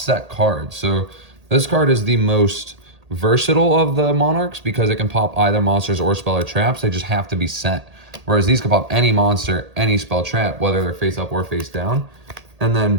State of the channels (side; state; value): left; late; 1.8 ms